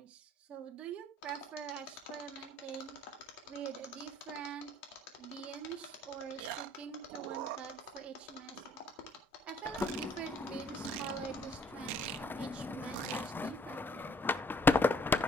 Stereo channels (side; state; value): both; normal; correlation 0.62